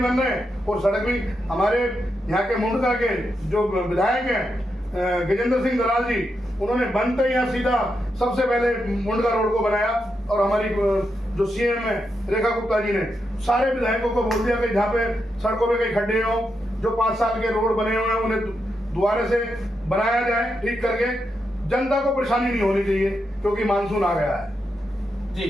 रहे हैं और सड़क भी। हमारे यहाँ के मुंडका के जो विधायक हैं गजेंद्र सिंह दलाल जी, उन्होंने बनते ही यहाँ सीधा सबसे पहले मुंडका रोड को बनाया। और हमारी जो सीएम है रेखा गुप्ता जी ने सारे विधायकों को बोल दिया कि जहाँ पे सड़कों पे कई खड्डे हो, जो 5 साल के रोड बने हुए हैं उन्हें दोबारा से बनाया जाए, ठीक करके। जनता को परेशानी नहीं होनी चाहिए क्योंकि मानसून आ गया है।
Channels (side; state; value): both; normal; correlation 0.84